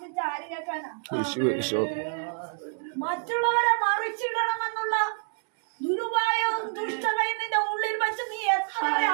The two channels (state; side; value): silent; left; 57 dB below the other